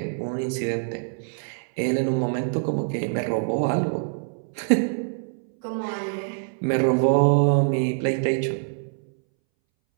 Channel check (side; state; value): left; silent; 62 dB below the other